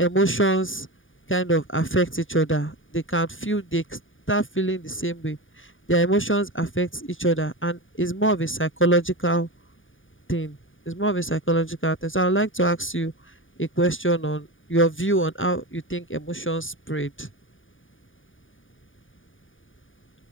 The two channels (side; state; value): right; late; 0.57 ms